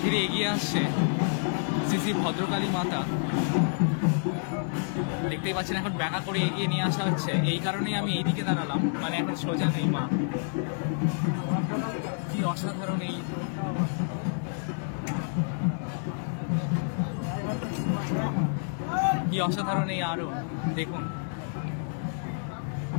ধীরে এগিয়ে আসছে শ্রী শ্রী ভদ্রকালী মাতা, দেখতেই পাচ্ছেন এখন ব্যাকা করে এগিয়ে নিয়ে আসা হচ্ছে। এই কারণেই আমি এইদিকে দাঁড়ালাম, মানে এখন সোজা নেই মা। কি অসাধারণ এই আরোহণ, দেখুন।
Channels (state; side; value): silent; right; digital silence